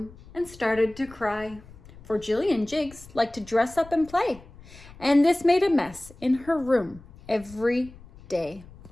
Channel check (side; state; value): left; noise; rumble, 21 dB below the sound